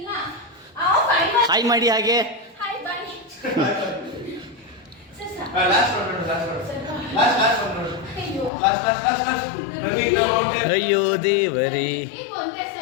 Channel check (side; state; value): right; drops out; at 8.5 s